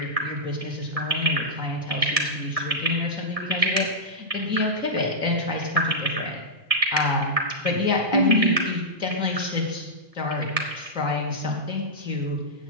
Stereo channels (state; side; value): late; left; 1.7 ms